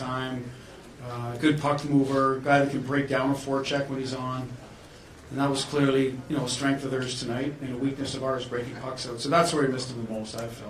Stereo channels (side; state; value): both; identical; correlation 1.00